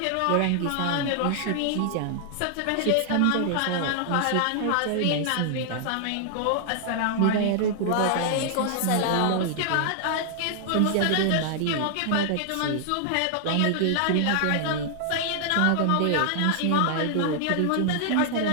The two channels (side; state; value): both; different; correlation 0.00